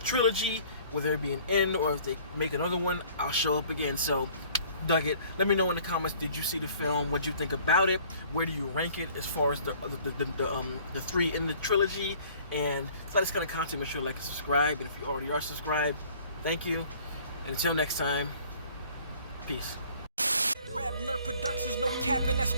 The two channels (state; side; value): inverted; both; correlation -0.54